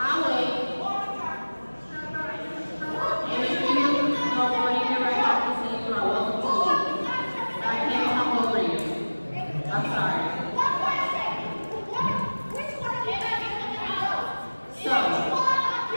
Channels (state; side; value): inverted; both; correlation -1.00